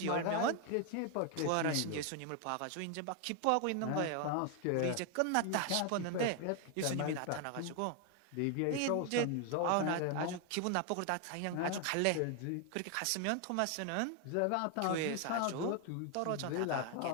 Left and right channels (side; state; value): both; different; correlation 0.01